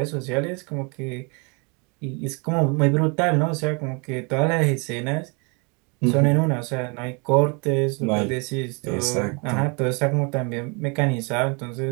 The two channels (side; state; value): left; quieter; 32.4 dB